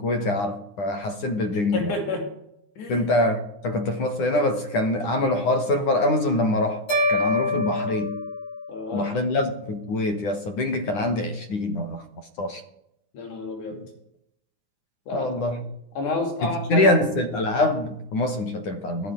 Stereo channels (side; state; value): right; late; 9.9 ms